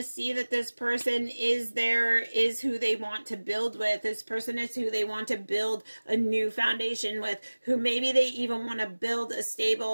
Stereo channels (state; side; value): inverted; both; correlation -1.00